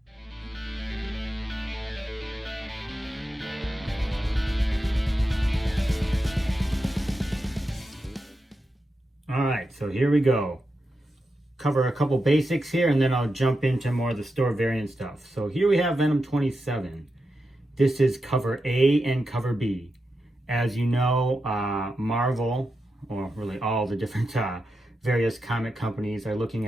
Alright, so here we go. Cover a couple basics here and then I'll jump into more of the store variant stuff. So here we have Venom 27. This is cover A and cover B. As you know, Marvel, or really all the different various comic companies are looking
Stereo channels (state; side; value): normal; both; correlation 0.88